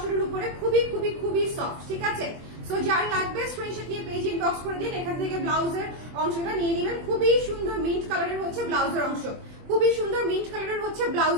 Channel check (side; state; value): left; late; 24 ms